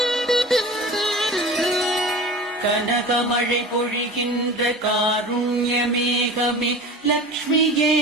கனகமழை பொழிகின்ற காருண்யமேகமே லக்ஷ்மியே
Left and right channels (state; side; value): normal; both; correlation 0.36